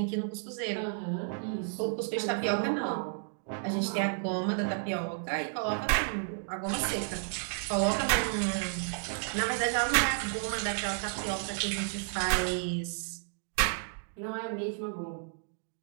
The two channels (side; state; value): left; silent; digital silence